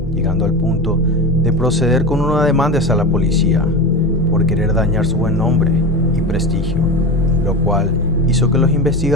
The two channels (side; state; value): both; normal; correlation 0.24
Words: llegando al punto de proceder con una demanda hacia la policía por querer dañar su buen nombre y prestigio, lo cual hizo que los